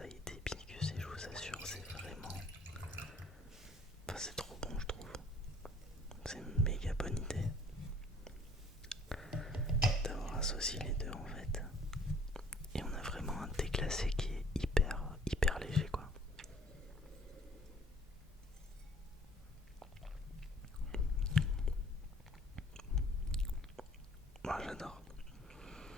d'hibiscus, et je vous assure c'est vraiment... Enfin c'est trop bon je trouve. C'est une méga bonne idée d'avoir associé les deux en fait. Et on a vraiment un thé glacé qui est hyper léger quoi. Moi j'adore.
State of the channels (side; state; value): both; normal; correlation 0.56